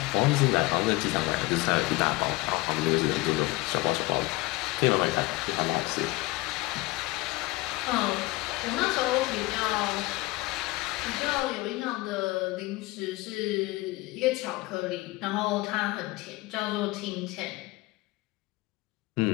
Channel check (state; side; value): quieter; right; 21.2 dB